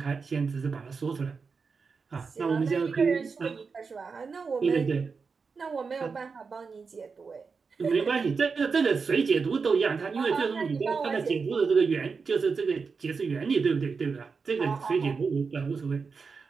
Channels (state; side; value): quieter; left; 5.1 dB